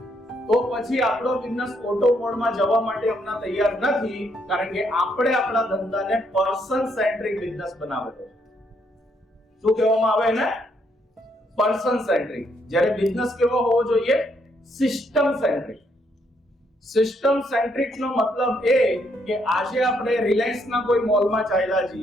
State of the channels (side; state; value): both; normal; correlation 0.73